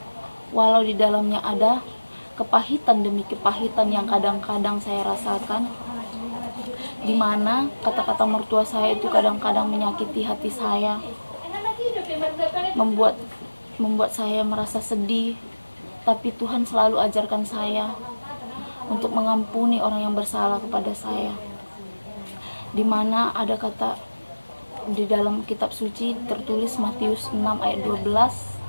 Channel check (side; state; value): both; inverted; correlation -1.00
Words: Walau di dalamnya ada kepahitan demi kepahitan yang kadang-kadang saya rasakan, di mana kata-kata mertua saya itu kadang-kadang menyakiti hati saya, membuat saya merasa sedih. Tapi Tuhan selalu ajarkan saya untuk mengampuni orang yang bersalah kepada saya, di mana ada kata di dalam kitab suci tertulis Matius 6 ayat 12